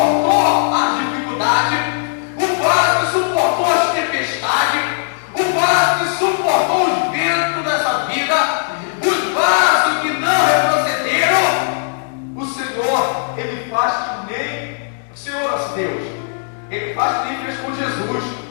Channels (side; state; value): right; silent; digital silence